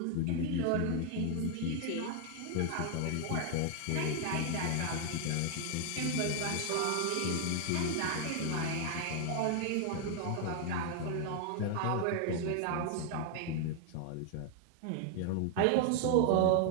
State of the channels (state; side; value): different; both; correlation 0.00